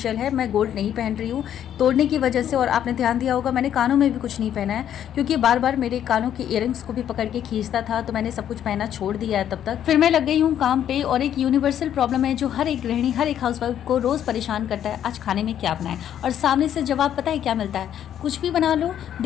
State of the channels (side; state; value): right; quieter; 10.2 dB